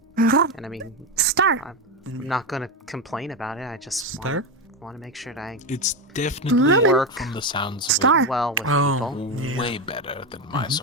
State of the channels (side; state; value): both; normal; correlation 0.12